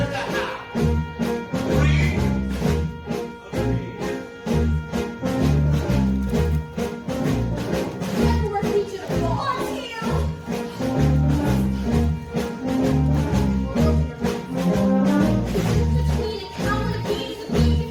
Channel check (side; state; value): both; identical; correlation 1.00